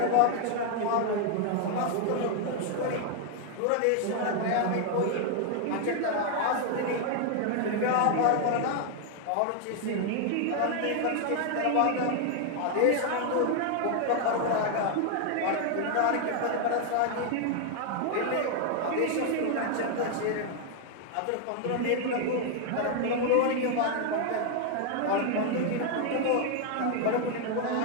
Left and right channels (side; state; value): both; different; correlation 0.00